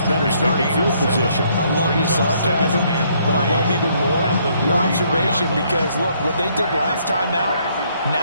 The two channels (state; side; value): inverted; both; correlation -0.68